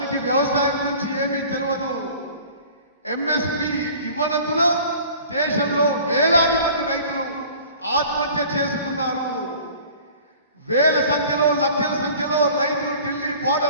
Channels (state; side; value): inverted; both; correlation -0.46